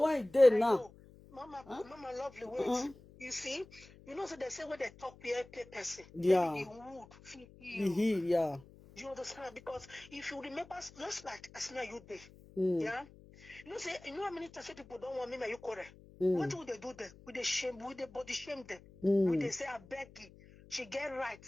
when it did now. Mama, lovely ways. You see, you know, so they say when they talk peer person, yeah, the wood, yeah. You understand? Because if you remember, just like as now you did, yeah. You know, say you know how many times people don't want me, now you correct. What would they do there? With the shame, with the body shame them. Would they say I beg you, she get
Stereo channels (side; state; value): left; noise; hum, 22 dB below the sound